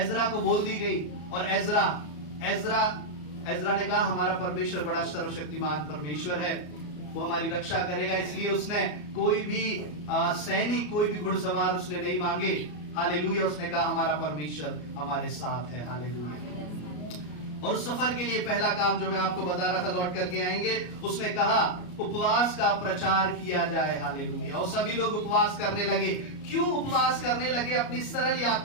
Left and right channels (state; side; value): late; right; 33 ms